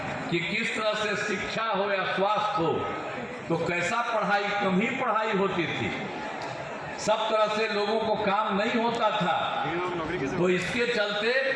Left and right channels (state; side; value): identical; both; correlation 1.00